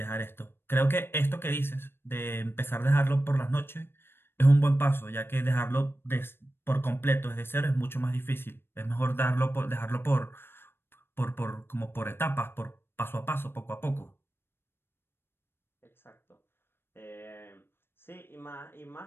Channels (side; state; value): right; late; 0.11 ms